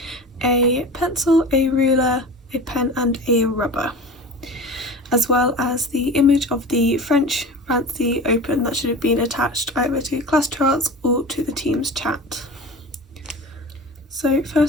a pencil, a ruler, a pen and a rubber, as well as the image of the French Fancy Open that should have been attached either to class charts or to the team's chat. So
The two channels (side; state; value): both; normal; correlation 0.34